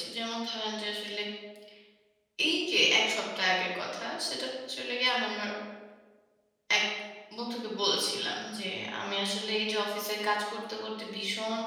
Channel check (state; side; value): identical; both; correlation 1.00